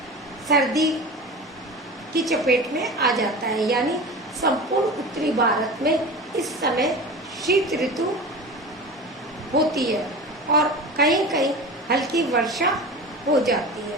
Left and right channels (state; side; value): normal; both; correlation 0.32